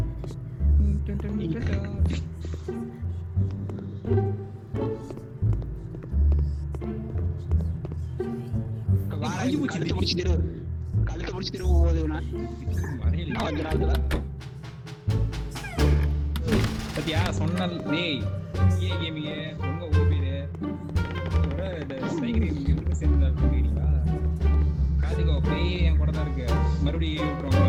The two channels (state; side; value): identical; both; correlation 1.00